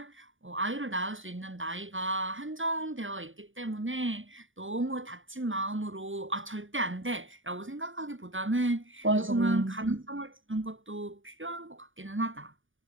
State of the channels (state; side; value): late; left; 0.57 ms